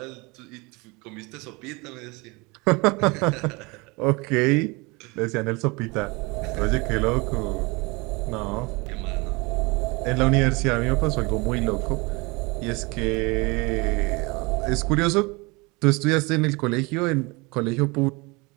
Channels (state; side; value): quieter; left; 26.4 dB